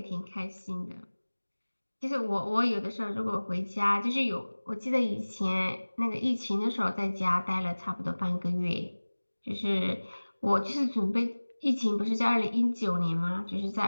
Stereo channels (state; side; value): inverted; both; correlation -1.00